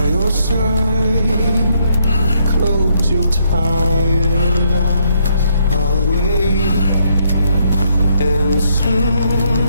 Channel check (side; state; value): both; inverted; correlation -0.73